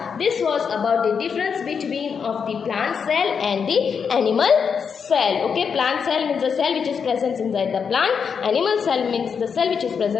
This was about the difference between of the plant cell and the animal cell. Okay, plant cell means the cell which is present inside the plant. Animal cell means the cell which is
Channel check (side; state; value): right; quieter; 6.4 dB